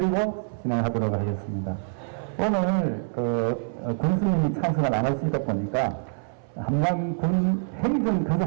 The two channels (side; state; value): left; silent; 60 dB below the other